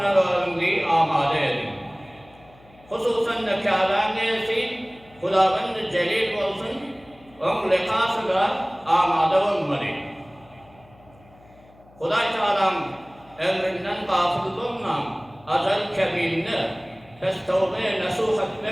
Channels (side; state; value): left; noise; hum, 27 dB below the sound